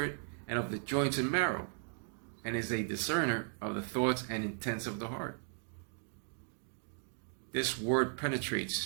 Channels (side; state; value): left; silent; 53 dB below the other